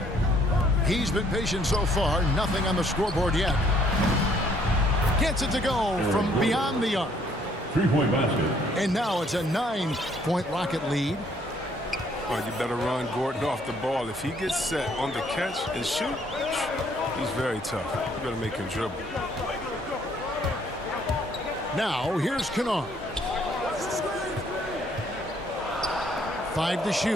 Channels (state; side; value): normal; both; correlation 0.65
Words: He's been patient so far. Nothing on the scoreboard yet. Gets it to go from beyond the arc. 3-point basket. And now it's a 9-point Rocket lead. Well, you better run Gordon off the ball. If he gets set on the catch and shoot, he's very tough. You better make him dribble. Now, here's Kennard. 5 to